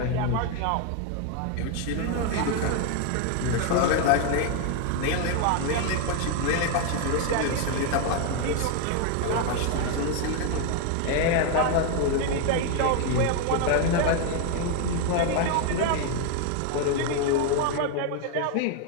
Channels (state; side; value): different; both; correlation 0.01